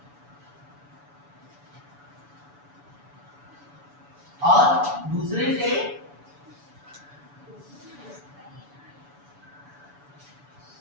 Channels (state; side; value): late; left; 7.0 ms